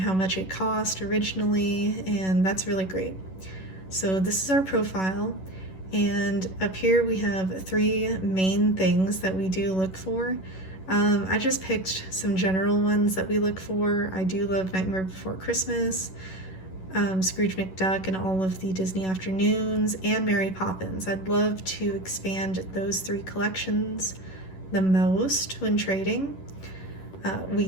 much it cost originally, and that's really great. So this is our profile, and up here we have 3 main things that we do look for. I just picked some general ones that we look for. I do love Nightmare Before Christmas, Scrooge McDuck and all of the Disney Afternoons, and Mary Poppins. I'd love to expand those 3 collections the most when trading. We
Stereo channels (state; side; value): late; right; 11 ms